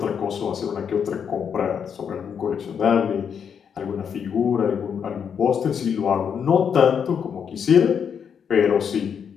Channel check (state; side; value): quieter; right; 7.4 dB